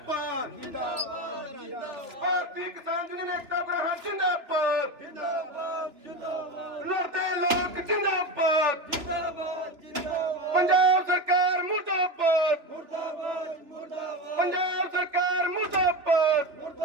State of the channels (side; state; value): left; late; 2.9 ms